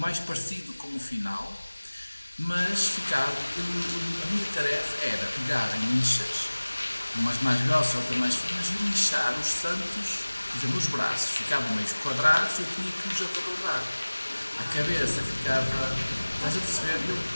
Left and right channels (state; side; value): inverted; both; correlation -1.00